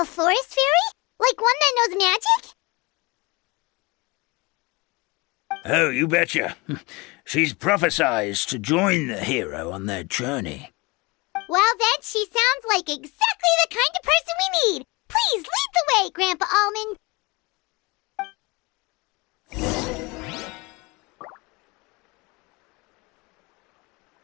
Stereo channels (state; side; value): quieter; right; 25.5 dB